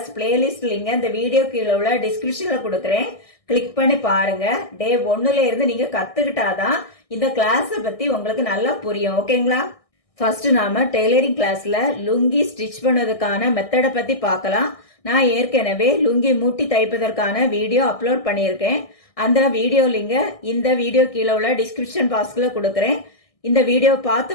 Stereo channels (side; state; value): right; late; 1.6 ms